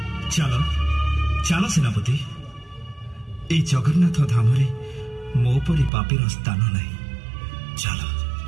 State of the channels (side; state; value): left; drops out; at 5.9 s